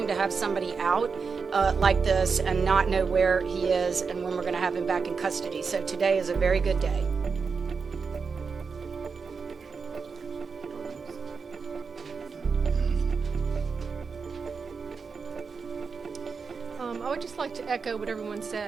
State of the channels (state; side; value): quieter; left; 5.2 dB